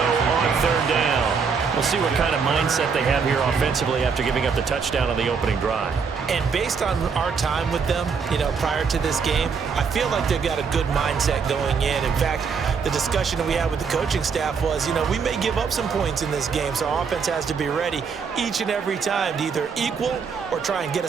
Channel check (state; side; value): quieter; left; 5.8 dB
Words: on 3rd down. We'll see what kind of mindset they have here offensively after giving up the touchdown on the opening drive. And based on our time with them, prior to this game, I feel like they've got a good mindset going in. In fact, the discussion that we had with the coaching staff was, we may give up some points in this game, so our offense has to be ready each and every time to either equal or try and get